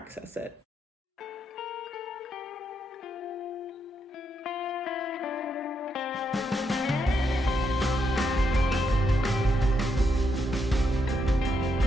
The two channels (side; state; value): both; normal; correlation 0.80